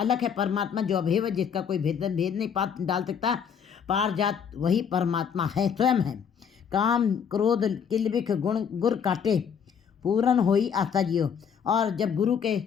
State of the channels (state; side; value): quieter; right; 7.3 dB